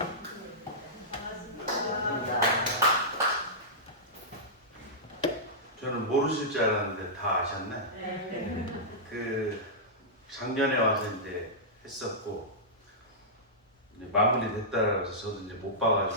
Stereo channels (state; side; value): normal; both; correlation -0.14